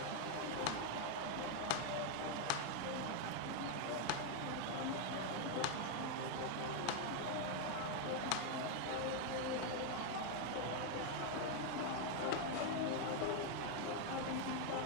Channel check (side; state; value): both; different; correlation 0.01